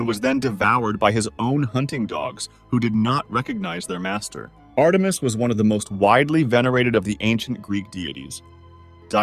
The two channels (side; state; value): both; identical; correlation 1.00